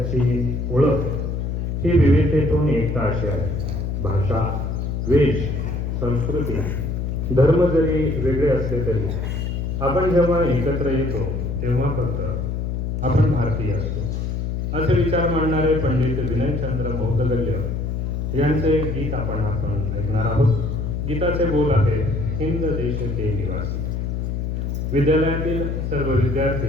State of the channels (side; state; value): left; noise; hum, 2 dB below the sound